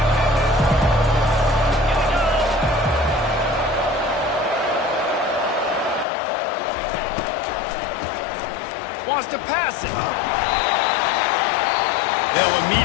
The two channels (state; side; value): drops out; right; at 6.1 s